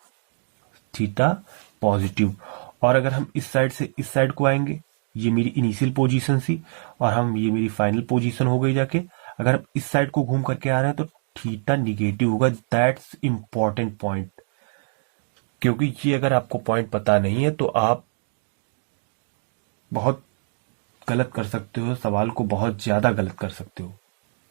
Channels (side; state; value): left; silent; digital silence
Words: थीटा पॉजिटिव। और अगर हम इस साइड से इस साइड को आएंगे, ये मेरी इनिशियल पोजीशन थी और हम ये मेरी फाइनल पोजीशन हो गई जाके, अगर हम इस साइड को घूम करके आ रहे हैं तो थीटा निगेटिव होगा। दैट्स इंपॉर्टेंट पॉइंट, क्योंकि ये अगर आपको पॉइंट पता नहीं है तो आप बहुत गलत कर सकते हो, सवाल को बहुत ज्यादा गलत कर सकते हो।